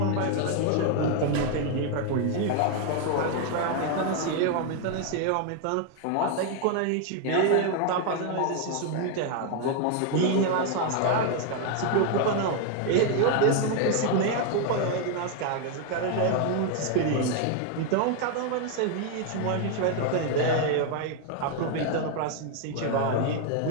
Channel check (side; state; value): both; different; correlation 0.01